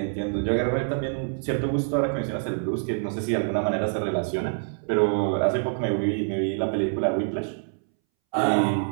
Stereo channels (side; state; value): left; silent; 61 dB below the other